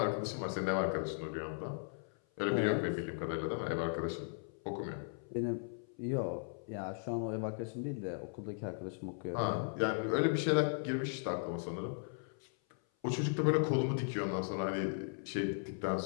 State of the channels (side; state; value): right; silent; 53 dB below the other